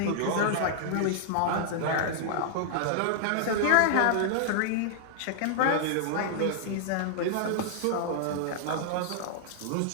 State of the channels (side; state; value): both; different; correlation -0.01